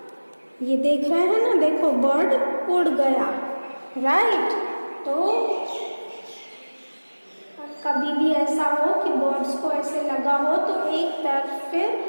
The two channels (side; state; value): both; inverted; correlation -1.00